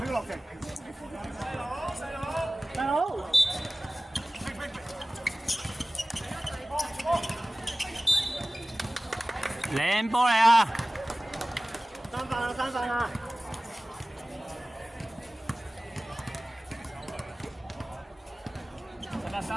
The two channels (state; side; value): normal; both; correlation 0.97